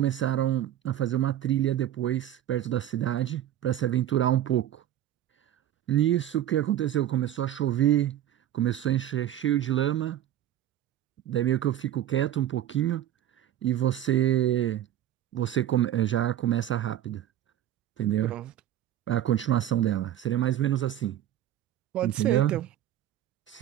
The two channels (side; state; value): left; quieter; 11.9 dB